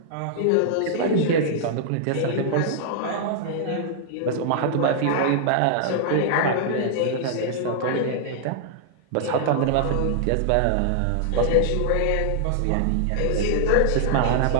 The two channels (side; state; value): both; different; correlation -0.01